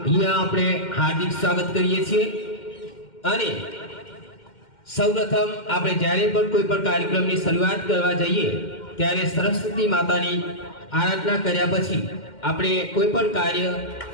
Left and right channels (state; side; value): late; right; 2.1 ms